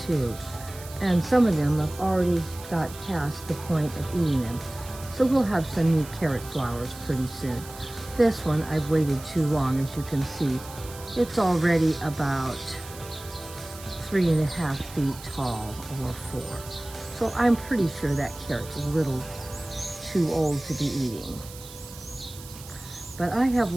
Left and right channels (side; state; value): right; noise; hiss, 16 dB below the sound